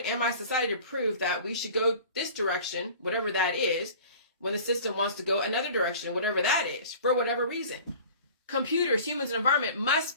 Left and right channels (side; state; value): both; inverted; correlation -0.44